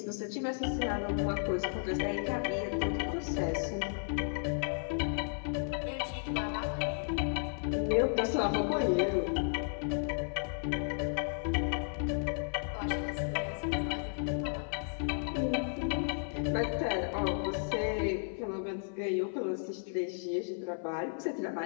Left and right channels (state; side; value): silent; right; 55 dB below the other